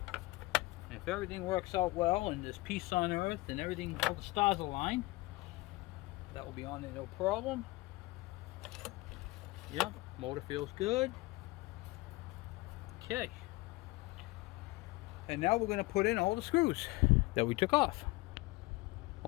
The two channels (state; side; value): quieter; right; 21.7 dB